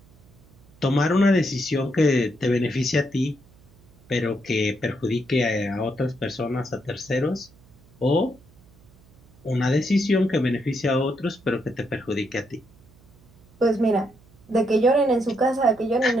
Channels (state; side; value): noise; right; hum, 28 dB below the sound